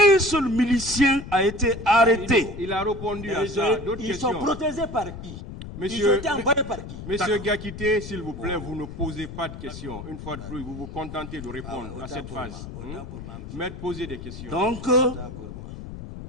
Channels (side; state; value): left; noise; rumble, 11 dB below the sound